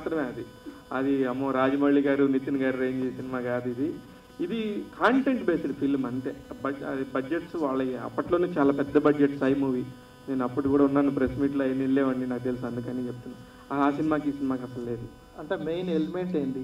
అది అమ్మో రాజమౌళి గారు నితిన్ గారు రేంజ్ సినిమా కాదు ఇది కాంటెంట్ బేస్డ్ ఫిల్మ్ అంతే. బడ్జెట్స్ వాళ్ళ అప్పట్లోనే చాలా పెద్ద బడ్జెట్ సై మూవీ. నేను అప్పుడు కూడా ఉన్నాను, ప్రెస్ మీట్లో అయిన వెళ్ళేవాడిని, నాకు తెలుసు, అందుకని చెప్తున్నాను. ఆ సినిమాకి ఈ సినిమాకి అసలు లేదు. అంటే మెయిన్ ఎలిమెంట్ ఏంటి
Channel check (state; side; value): identical; both; correlation 1.00